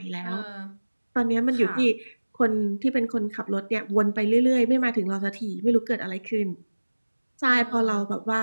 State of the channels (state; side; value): inverted; both; correlation -1.00